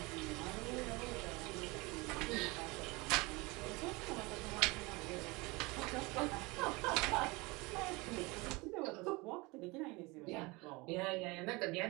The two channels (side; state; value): left; quieter; 24.8 dB